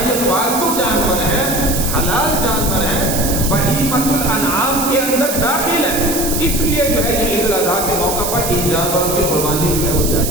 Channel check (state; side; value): noise; right; hiss, 3 dB below the sound